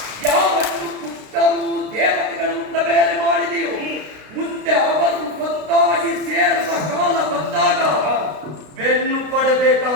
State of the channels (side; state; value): left; late; 32 ms